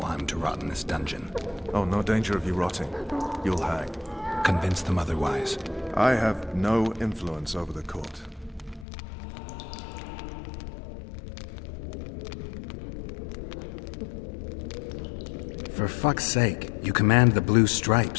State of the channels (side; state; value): right; drops out; at 8.8 s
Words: I'm to rot in this dungeon. Oh, no danger of you rotting. You'll hang. Convince them otherwise. I have no influence over the court. For fuck's sake, you command the Blue